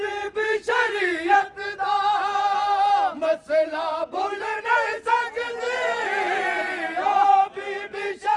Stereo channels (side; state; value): both; identical; correlation 1.00